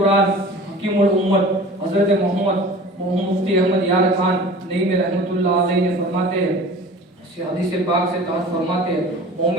حکیم الامت حضرت محمد مفتی احمد یار خان نعیمی رحمۃ اللہ علیہ نے فرماتے ہیں، حدیث پاک سے تحت فرماتے ہیں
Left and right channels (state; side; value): normal; both; correlation 0.41